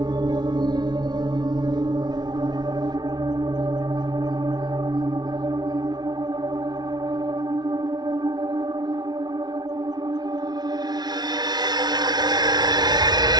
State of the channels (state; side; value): late; left; 0.19 ms